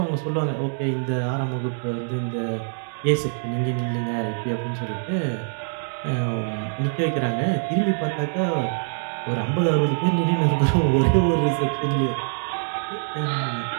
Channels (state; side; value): silent; left; 63 dB below the other